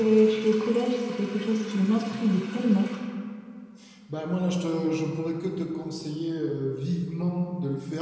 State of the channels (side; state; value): both; identical; correlation 1.00